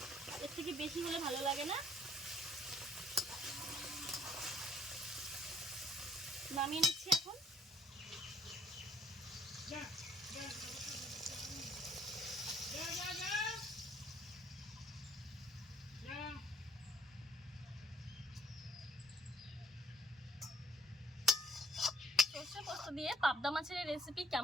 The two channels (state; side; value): normal; both; correlation 0.61